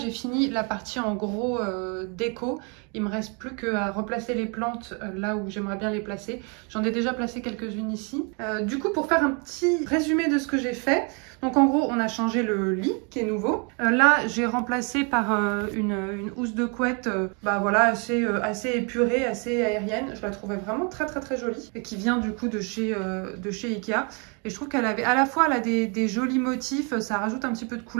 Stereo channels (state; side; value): quieter; left; 34.5 dB